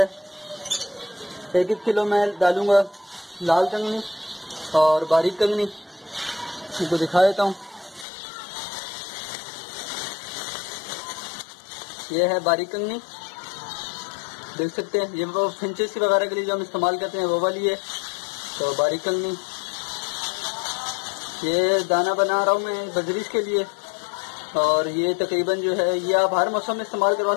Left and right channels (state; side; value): drops out; right; at 8.1 s